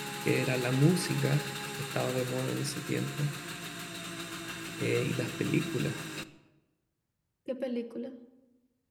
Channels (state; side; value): identical; both; correlation 1.00